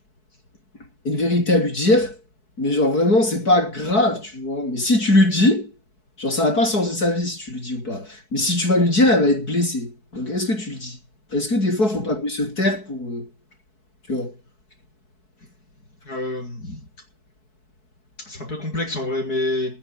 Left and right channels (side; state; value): right; late; 4.6 ms